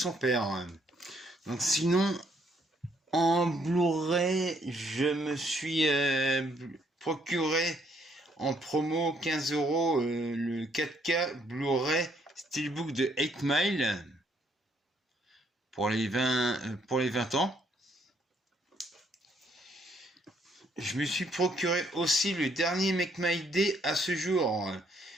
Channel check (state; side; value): normal; both; correlation 0.69